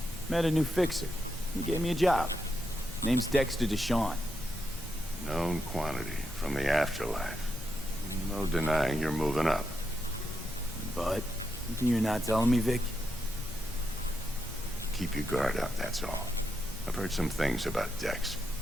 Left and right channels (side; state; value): both; normal; correlation 0.84